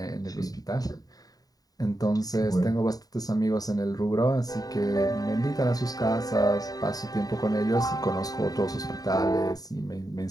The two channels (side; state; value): right; late; 0.18 ms